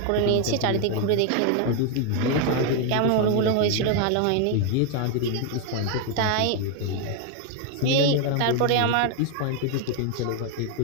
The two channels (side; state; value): both; different; correlation 0.01